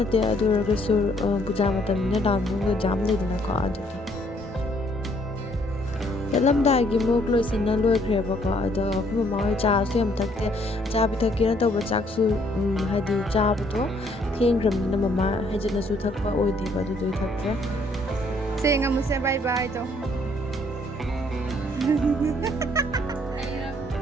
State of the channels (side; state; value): both; normal; correlation 0.66